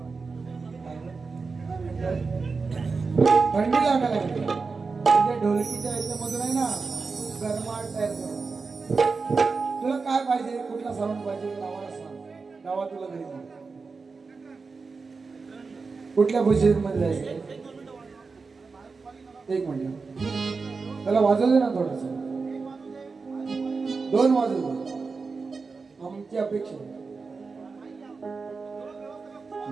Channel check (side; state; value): left; quieter; 4.5 dB